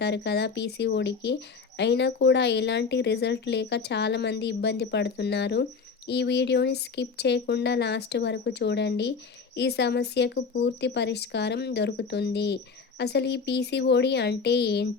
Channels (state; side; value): quieter; right; 5.2 dB